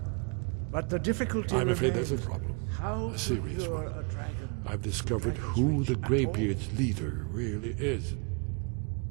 But the difficulty... I'm afraid there's a problem. A serious one. I've discovered who the Greybeard's leader really is.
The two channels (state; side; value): quieter; left; 35.1 dB